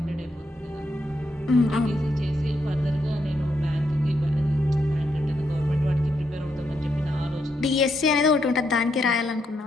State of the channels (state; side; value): normal; both; correlation 0.79